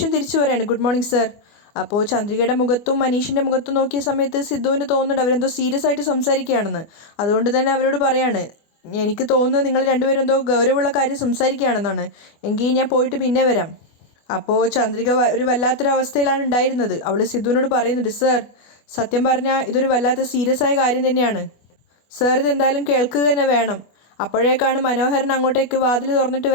തിരിച്ചു പറയാണ്, ഗുഡ് മോർണിംഗ് സർ. അപ്പോൾ ചന്ദ്രികയുടെ മുഖത്തും മനീഷിൻ്റെ മുഖത്തും നോക്കിയ സമയത്ത് സിദ്ധുവിന് തോന്നുന്നുണ്ട് അവരെന്തോ സീരിയസ് ആയിട്ട് സംസാരിക്കുകയാണെന്ന്. അതുകൊണ്ട് തന്നെ അവരോട് പറയാണ്, എനിക്ക് തോന്നുന്നത് നിങ്ങൾ രണ്ടുപേരും എന്തോ ഗൗരവമുള്ള കാര്യം സംസാരിക്കുകയാണെന്നാണ്. എങ്കിൽ ഞാൻ പോയിട്ട് പിന്നെ വരാം. അപ്പോൾ ചന്ദ്രിക ഒരു വല്ലാത്തൊരവസ്ഥയിലാണ് ഉണ്ടായിരുന്നത്. അവൾ സിദ്ധുവിനോട് പറയുന്നുണ്ട്, സർ സത്യം പറഞ്ഞാൽ ഇതൊരു വല്ലാത്ത സീരിയസ് ആയ കാര്യം തന്നെയാണ്. സർ ഇതെന്തായാലും കേൾക്കുക തന്നെ വേണം. അപ്പോഴേക്കാണ് മനോഹരൻ അങ്ങോട്ടേക്ക് വാതിൽ തുറന്നിട്ട്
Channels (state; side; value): late; right; 24 ms